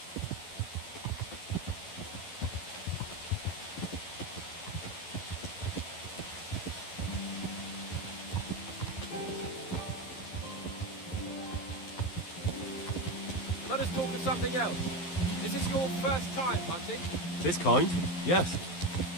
Let us talk of something else. Is this your first time hunting? This kind? Yes.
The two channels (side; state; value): right; late; 11 ms